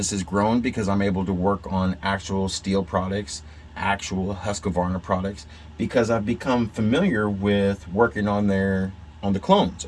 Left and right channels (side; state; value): both; identical; correlation 1.00